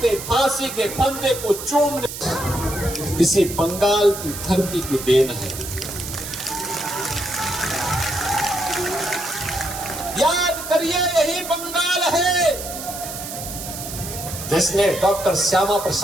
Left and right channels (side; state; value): right; noise; hiss, 9 dB below the sound